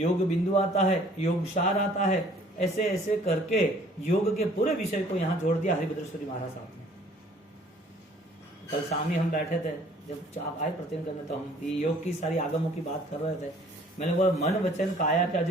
बिंदु आता है, योग सार आता है, ऐसे ऐसे करके योग के पूरे विषय को यहाँ जोड़ दिया हरिभद्रेश्वरी महाराज साहब ने। कल शाम ही हम बैठे थे, जब आप आए प्रतिदिन करने, तो हम योग की सारी आगमों की बात कर रहे थे। मैंने बोला मन वचन काया का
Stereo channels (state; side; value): normal; both; correlation 0.56